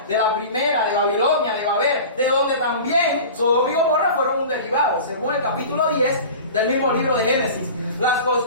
de la primera, de Babilonia, de Babel, de donde también Sodoma y Gomorra fueron un derivado, según el capítulo 10 del mismo libro de Génesis. Las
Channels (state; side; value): inverted; both; correlation -0.37